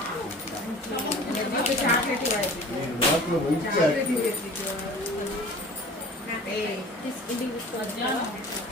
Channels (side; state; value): both; normal; correlation 0.43